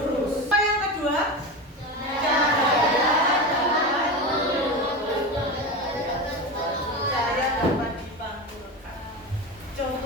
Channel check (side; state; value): both; normal; correlation 0.22